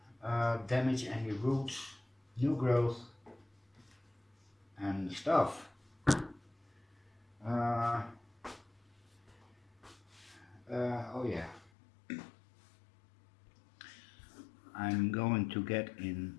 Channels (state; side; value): drops out; right; at 11.7 s